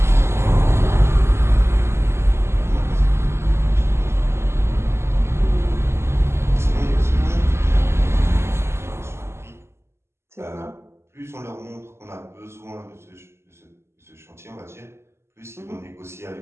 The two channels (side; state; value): left; late; 0.13 ms